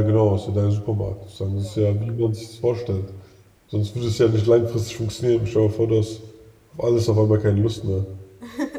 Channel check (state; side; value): identical; both; correlation 1.00